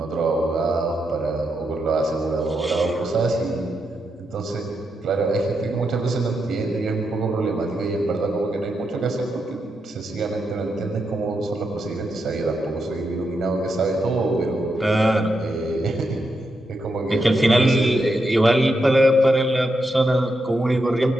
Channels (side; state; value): both; normal; correlation 0.84